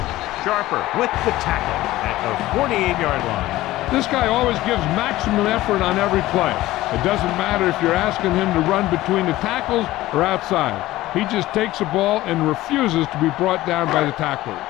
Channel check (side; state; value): right; quieter; 16.6 dB